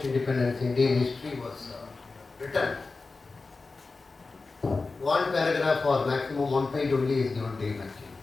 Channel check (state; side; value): quieter; right; 3.9 dB